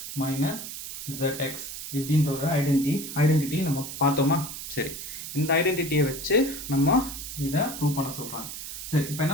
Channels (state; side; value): noise; right; hiss, 8 dB below the sound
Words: minus zx இப்படின்ற ஒரு identity நம்ம பார்த்தோமா. சரி, இந்த ஐடென்டிட்டியை வச்சு நம்ம இதை prove பண்ண சொல்கிறாங்க. சரி, இப்போ